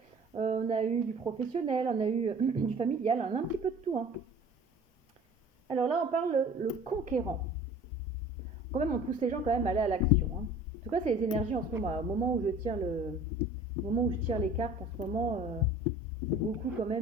on a eu du professionnel, on a eu du familial, on a un petit peu de tout, hein. Alors là, on parle le conquérant. Quand même, on pousse les gens quand même à aller à l'action, hein. En tout cas, c'est les énergies en ce moment. Au moment où je tire au moment où je tire les cartes, en ce moment, c'est beaucoup quand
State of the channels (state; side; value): normal; both; correlation 0.46